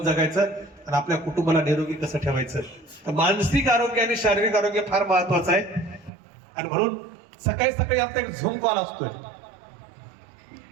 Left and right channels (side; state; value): left; drops out; at 6.1 s